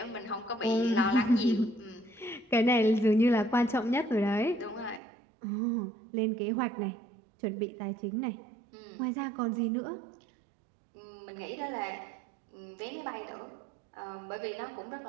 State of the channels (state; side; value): drops out; left; at 5.0 s